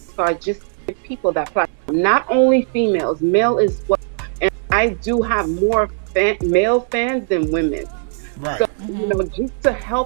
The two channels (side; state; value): left; silent; 66 dB below the other